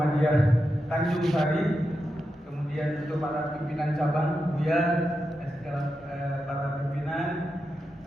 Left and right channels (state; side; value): normal; both; correlation 0.88